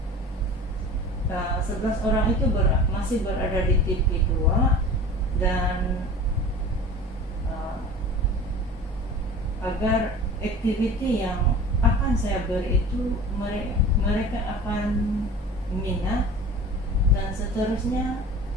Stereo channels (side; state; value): both; normal; correlation 0.39